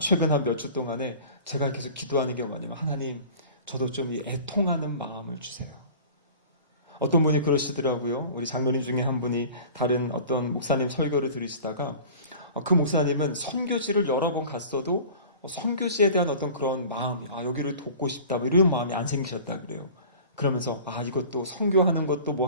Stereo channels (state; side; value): inverted; both; correlation -0.42